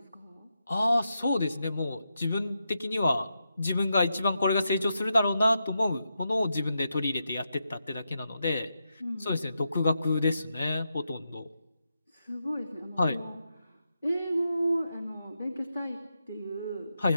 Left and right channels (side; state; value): both; inverted; correlation -0.86